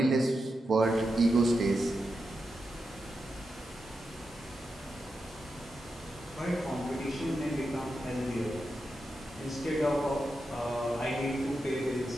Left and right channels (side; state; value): both; normal; correlation 0.88